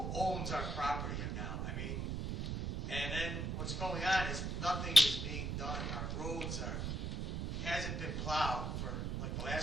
owns our property now? I mean, and then what's going on is nothing is being done. Our roads hasn't been plowed for like the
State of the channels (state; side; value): noise; right; rumble, 2 dB below the sound